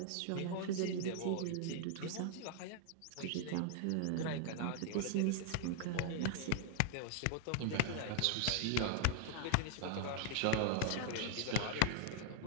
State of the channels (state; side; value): different; both; correlation 0.00